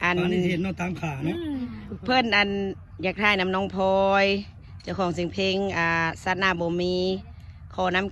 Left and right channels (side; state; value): both; identical; correlation 1.00